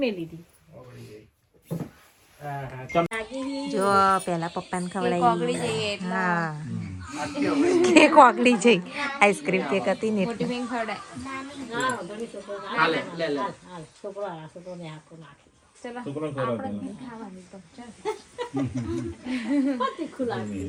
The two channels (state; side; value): identical; both; correlation 1.00